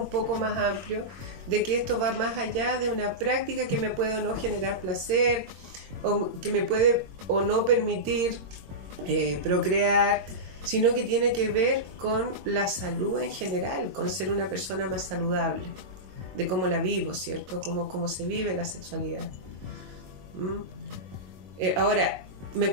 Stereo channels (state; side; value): late; left; 21 ms